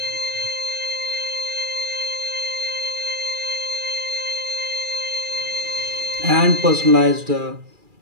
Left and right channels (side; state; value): left; late; 2.4 ms